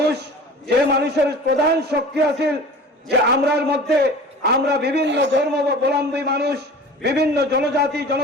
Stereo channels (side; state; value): both; normal; correlation 0.40